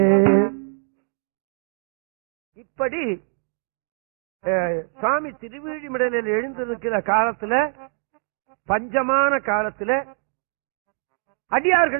இப்படி சுவாமி திருவிழிமிடலில் எழுந்திருக்கிற காலத்துல, பஞ்சமான காலத்துல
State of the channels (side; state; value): left; silent; 63 dB below the other